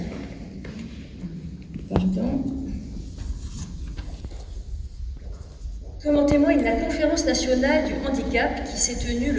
Comme en témoigne la Conférence nationale du handicap qui s'est tenue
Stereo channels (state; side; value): identical; both; correlation 1.00